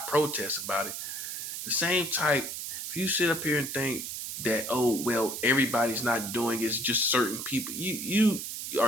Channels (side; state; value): right; noise; hiss, 6 dB below the sound